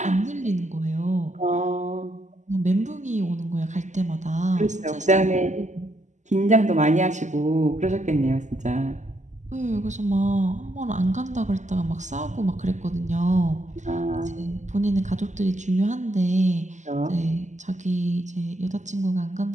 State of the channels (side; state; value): left; late; 0.34 ms